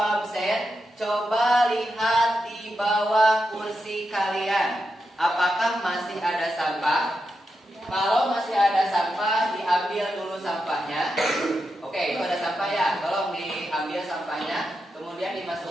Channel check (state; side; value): normal; both; correlation 0.87